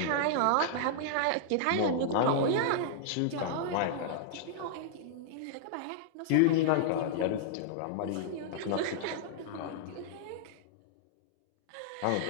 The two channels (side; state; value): both; different; correlation -0.01